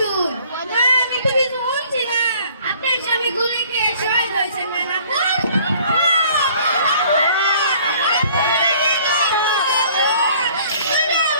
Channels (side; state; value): both; inverted; correlation -0.56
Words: আমি তো কিছু বলছি না আপনার স্বামী গুলি খেয়ে শহীদ হয়েছেন না